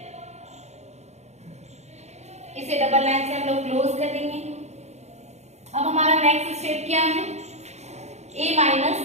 इसे डबल लाइन से हम लोग क्लोज कर देंगे। अब हमारा नेक्स्ट स्टेप क्या है, ए माइनस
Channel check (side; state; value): left; late; 0.32 ms